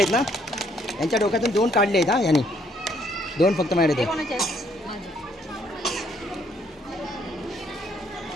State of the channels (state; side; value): normal; both; correlation 0.67